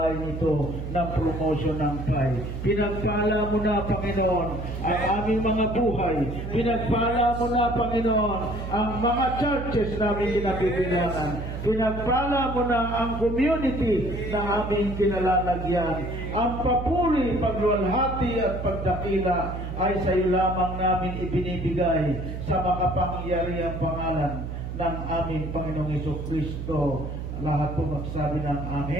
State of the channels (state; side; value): noise; right; hum, 6 dB below the sound